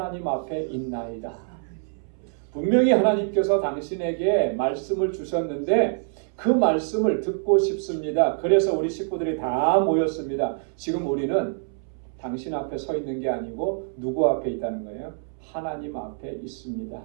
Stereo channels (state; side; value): silent; left; 61 dB below the other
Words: 앞에 있나이다. 분명히 하나님께서 당신에게 말씀을 주셨는데 그 말씀을 듣고 싶습니다. 그래서 우리 식구들이 다 모였습니다. 지금 우리는 당신 앞에 서 있는 게 아니고 누구 앞에 있다는 거예요? 하나님 앞에